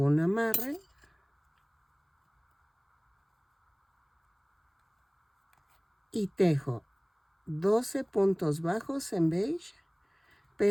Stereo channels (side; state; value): both; identical; correlation 1.00